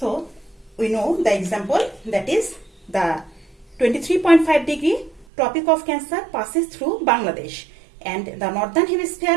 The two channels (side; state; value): left; drops out; at 5.2 s